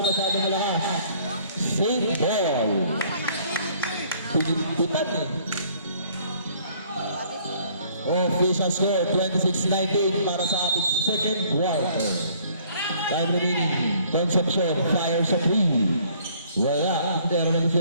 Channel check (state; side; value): inverted; both; correlation -0.59